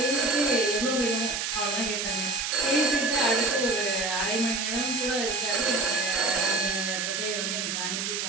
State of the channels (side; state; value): right; noise; hiss, 1 dB below the sound